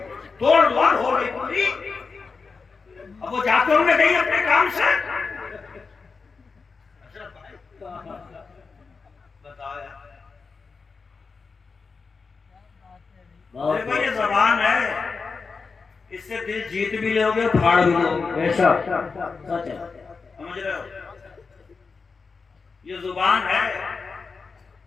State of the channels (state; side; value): quieter; right; 4.7 dB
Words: توڑ ووڑ ہو گئی پوری. اب وہ جاتے ہوں گے نہیں اپنے کام سے. بتایا دیکھو یہ زبان ہے، اس سے دل جیت بھی لو گے پھاڑ بھی لو گے. سمجھ رہے ہو؟ یہ زبان ہے.